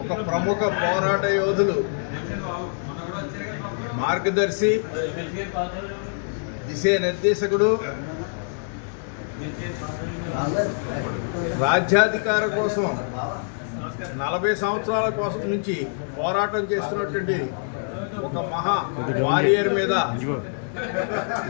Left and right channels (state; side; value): silent; right; digital silence